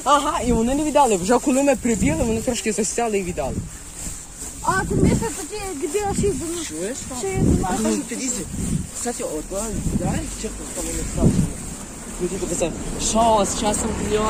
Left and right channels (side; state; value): both; identical; correlation 1.00